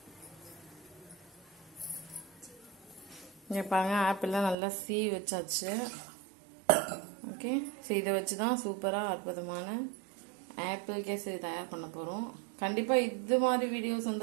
இங்கே பாருங்க, ஆப்பிள்லாம் நல்லா சீவி வச்சாச்சு, ஓகே? ஸோ இதை வச்சு தான் சூப்பராக அற்புதமான ஆப்பிள் கேசரி தயார் பண்ண போகிறோம். கண்டிப்பாக இது மாதிரி வீடியோஸ்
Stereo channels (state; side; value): drops out; left; at 4.5 s